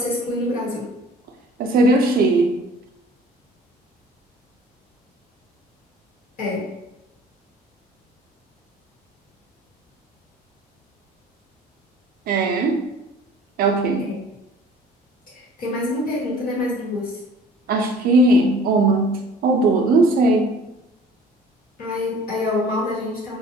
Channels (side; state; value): both; normal; correlation 0.50